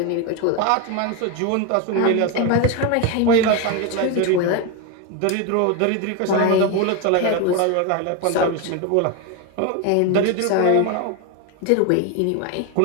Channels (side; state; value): both; different; correlation 0.02